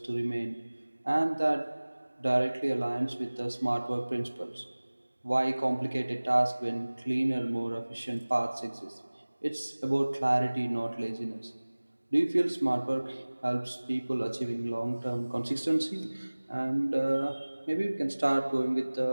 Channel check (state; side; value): inverted; both; correlation -1.00